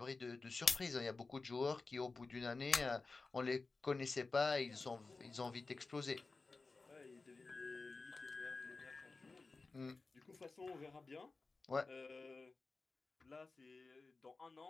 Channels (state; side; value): quieter; right; 3.8 dB